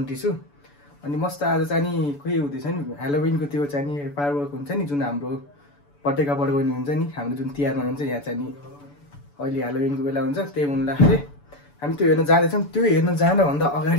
छु। अनि मस्त आज चाहिँ नि खोइ हुँदैछ नि हेलोविनको त्यो चाहिँ नि फायरवर्क हुन्छ नि, जुन हाम्रो पटेका पड्काउने हुन्छ नि, हाम्रो जुन तिहारमा हुन्छ यहाँ चाहिँ नि अहिले हेलोविनको बेला हुन्छ। त्यही हुँदाखेरि हामी त्यो हेर्न जाँदैछौँ। त्यो हेर्न जानभन्दा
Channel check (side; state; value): right; late; 7.0 ms